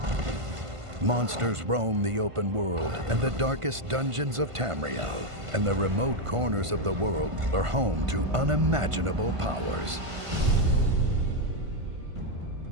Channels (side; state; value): left; late; 1.5 ms